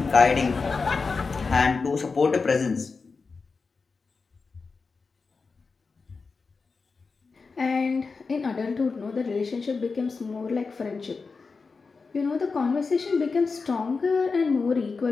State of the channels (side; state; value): right; quieter; 4.5 dB